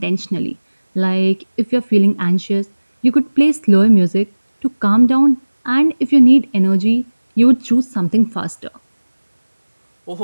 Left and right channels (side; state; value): both; inverted; correlation -1.00